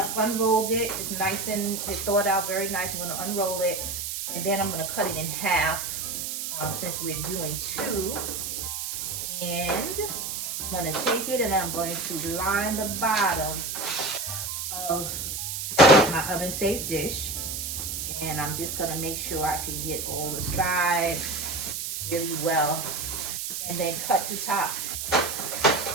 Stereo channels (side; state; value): right; noise; hiss, 4 dB below the sound